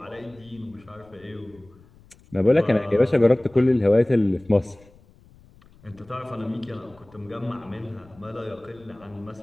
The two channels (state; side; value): noise; left; rumble, 27 dB below the sound